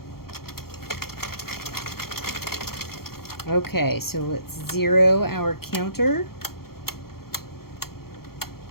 Okay, so let's 0 our counter.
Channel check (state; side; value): late; right; 0.94 ms